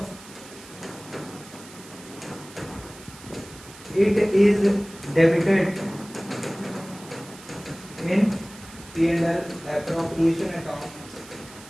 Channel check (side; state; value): right; noise; hiss, 19 dB below the sound